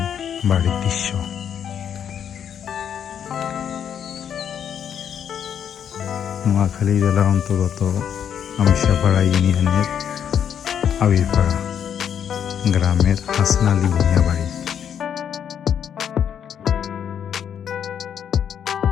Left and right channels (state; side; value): quieter; right; 8.6 dB